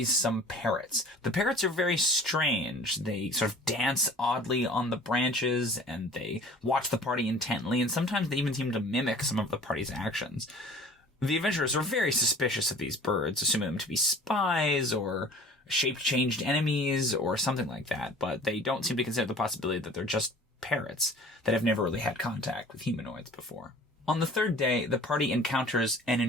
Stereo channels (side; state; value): both; normal; correlation 0.46